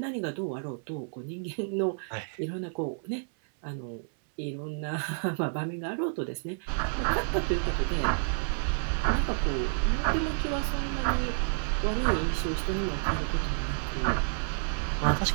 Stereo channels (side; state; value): left; silent; 58 dB below the other